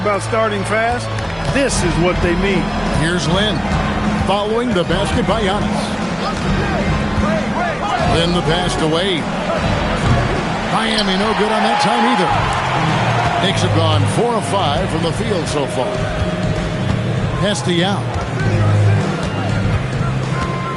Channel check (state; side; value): identical; both; correlation 1.00